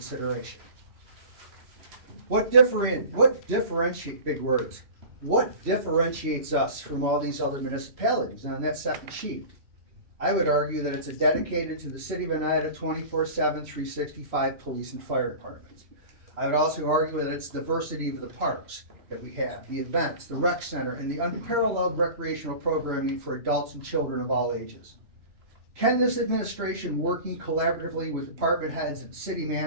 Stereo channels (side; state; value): left; late; 3.0 ms